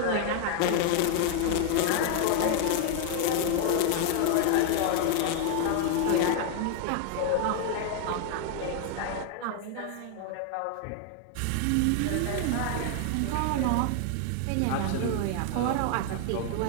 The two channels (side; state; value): both; different; correlation 0.00